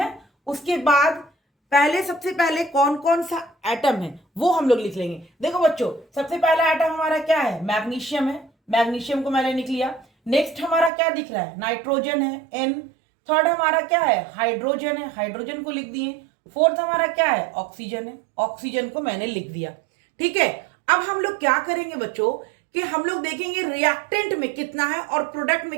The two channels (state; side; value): drops out; left; at 10.9 s